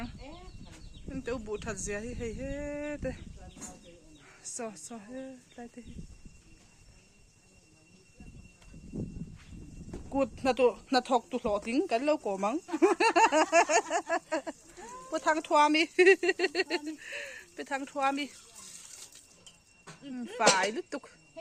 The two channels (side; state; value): both; identical; correlation 1.00